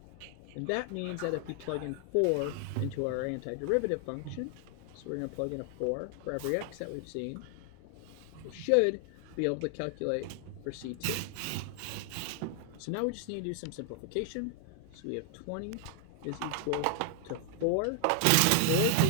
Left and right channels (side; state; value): both; different; correlation 0.00